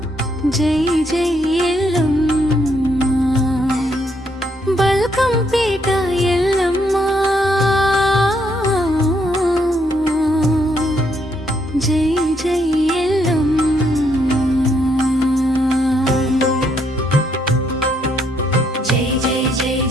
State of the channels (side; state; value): both; normal; correlation 0.73